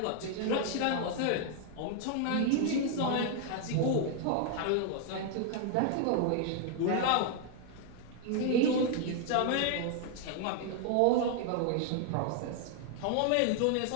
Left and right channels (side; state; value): both; different; correlation 0.00